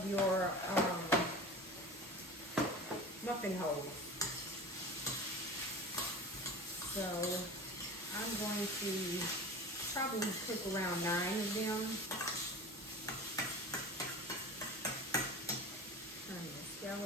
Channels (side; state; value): both; normal; correlation 0.35